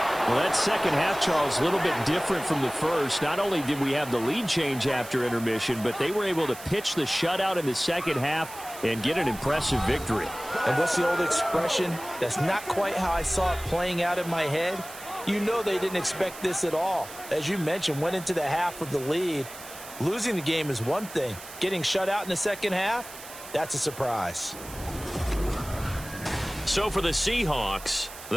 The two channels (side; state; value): right; noise; hiss, 15 dB below the sound